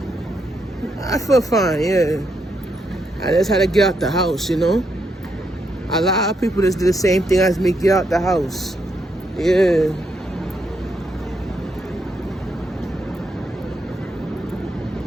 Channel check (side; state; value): both; normal; correlation 0.78